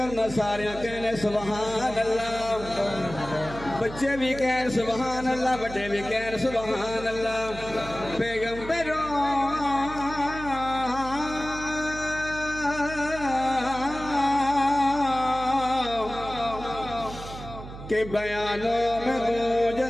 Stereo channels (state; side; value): noise; right; hum, 12 dB below the sound